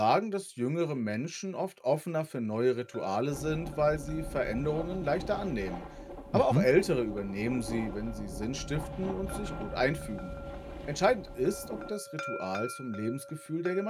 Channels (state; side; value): identical; both; correlation 1.00